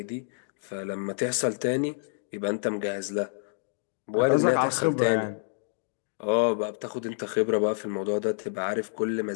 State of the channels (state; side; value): silent; right; digital silence